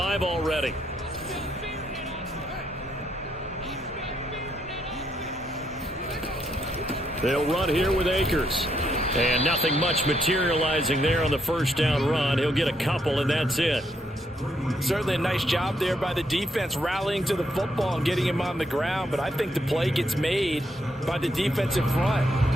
already. They'll run here with Akers. And nothing much materializing there on the first down run. He'll get a couple, and that's it. Certainly a nice job there by the defense rallying to the football and getting him on the ground. But I think the play gets made by the defensive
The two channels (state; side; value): normal; both; correlation 0.76